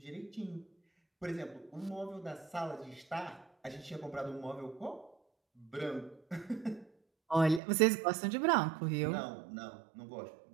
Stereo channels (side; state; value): left; drops out; at 7.6 s